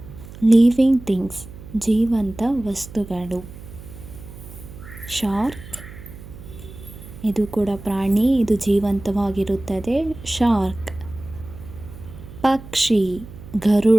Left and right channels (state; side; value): noise; right; hum, 15 dB below the sound